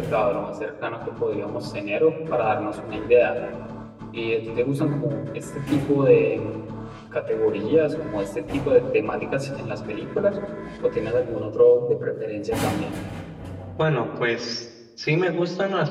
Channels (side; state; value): both; identical; correlation 1.00